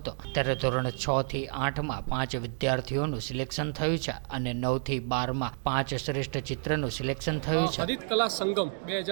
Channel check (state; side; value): silent; left; digital silence